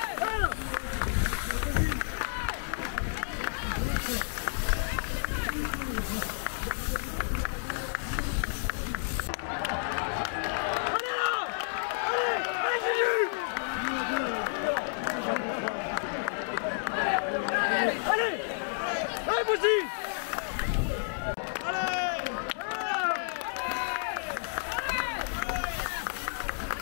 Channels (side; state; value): right; silent; digital silence